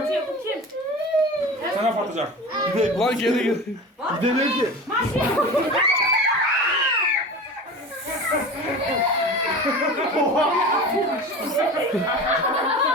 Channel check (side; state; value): both; normal; correlation 0.33